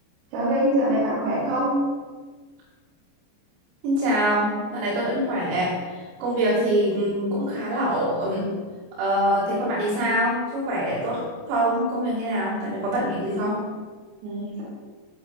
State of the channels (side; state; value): left; late; 29 ms